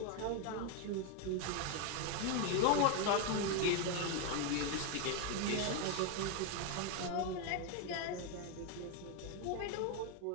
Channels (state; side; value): different; both; correlation 0.01